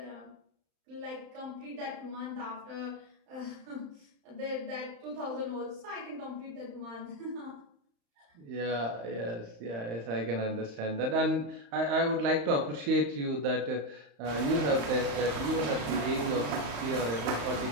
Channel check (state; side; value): late; left; 35 ms